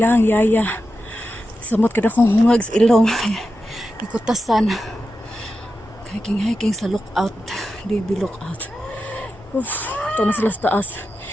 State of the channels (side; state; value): both; normal; correlation 0.90